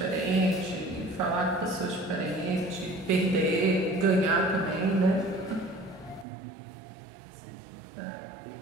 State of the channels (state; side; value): drops out; left; at 6.2 s